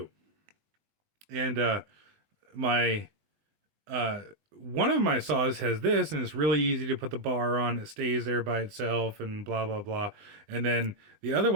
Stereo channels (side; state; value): left; late; 19 ms